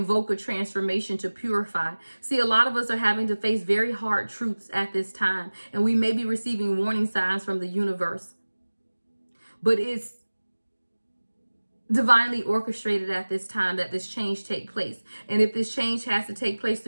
a transformation to purify. See, a lot of us are having to face very hard truths at this time. And we may be receiving warning signs from the universe. But it's divinely orchestrated at this time that this change take place. And if this change has to take place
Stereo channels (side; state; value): both; inverted; correlation -1.00